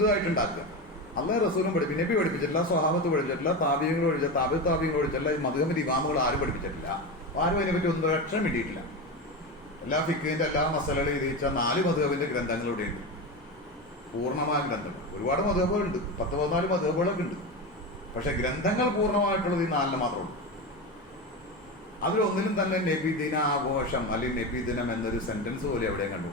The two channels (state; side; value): normal; both; correlation 0.20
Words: അള്ളാഹ് റസൂലും പഠിപ്പിച്ചു, നബി പഠിപ്പിച്ചിട്ടില്ല, സ്വഹാബത്ത് പഠിച്ചിട്ടില്ല, താബിയങ്ങൾ പഠിച്ചില്ല, താബിയങ്ങൾ പഠിച്ചിട്ടില്ല, ഈ മദ്ഹബിന്റെ ഇമാമുകൾ ആരും പഠിപ്പിച്ചിട്ടില്ല. ആരും അതിനെപ്പറ്റി ഒന്നും അക്ഷരം കിട്ടിയിട്ടില്ല. എല്ലാ ഫിഖിന്റെ എല്ലാ മസലകളും എഴുതിച്ച 4 മദ്ഹബിന്റെ ഗ്രന്ഥങ്ങൾ ഇവിടെയുണ്ട്, പൂർണ്ണമായ ഗ്രന്ഥങ്ങൾ. ഒരുപാട് മദ്ഹബുകളുണ്ട്, 10-14 മദ്ഹബുകളൊക്കെ ഉണ്ട്. പക്ഷെ ഗ്രന്ഥങ്ങൾ പൂർണ്ണമായിട്ടുള്ളത് ഈ 4 മാത്രമേ ഉള്ളൂ. അതിലൊന്നിലും തന്നെ നബിദിന ആഘോഷം അല്ലെങ്കിൽ നബിദിനം എന്നൊരു സെന്റൻസ് പോലെ എവിടെയും